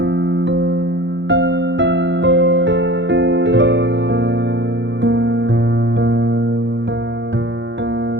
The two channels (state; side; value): late; left; 0.53 ms